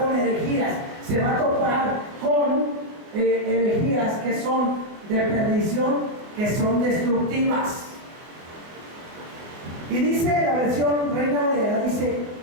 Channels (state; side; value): late; left; 24 ms